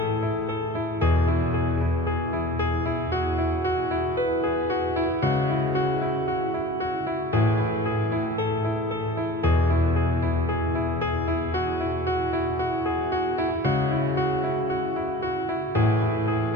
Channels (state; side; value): normal; both; correlation 0.40